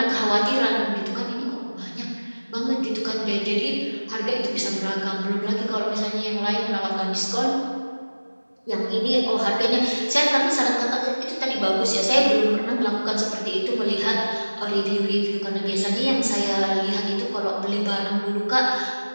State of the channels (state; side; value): inverted; both; correlation -1.00